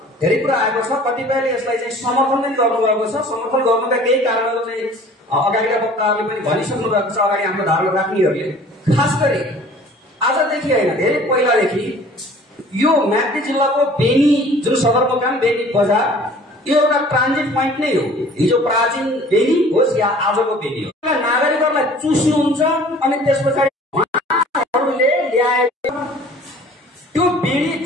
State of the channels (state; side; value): normal; both; correlation 0.49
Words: धेरै कुरा आएको छ। कतिपयले यसलाई चाहिँ समर्थन पनि गर्नुभएको छ। समर्थन गर्नुका केही कारणहरू चाहिँ अगाडिका वक्ताहरूले पनि भनिसक्नु भएको छ, अगाडि हाम्रो धारणा राख्नेहरूले। खास गरी आजदेखि होइन, धेरै पहिलादेखि यो म्याग्दी जिल्लाको बेनी जुन सदरमुकाम, बेनी बजार, यो एउटा ट्रान्जिट पोइन्ट नै हो। हिजो प्राचीन बेनी होस् या आजको बेनी हो, नागरिकहरूलाई चुस्नुहुन्छ अनि त्यस पछाडि उहाँहरूले ल्याएको त्यो बेनी